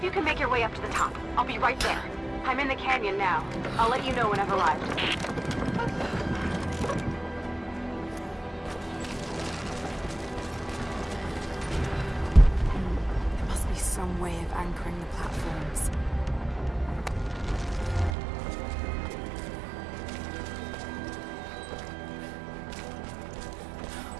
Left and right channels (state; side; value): drops out; left; at 18.1 s